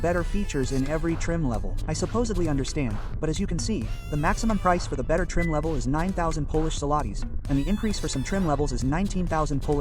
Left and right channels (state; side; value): identical; both; correlation 1.00